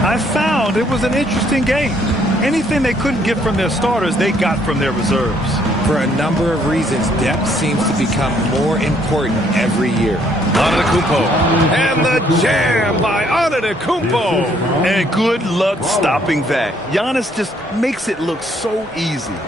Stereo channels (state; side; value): normal; both; correlation 0.67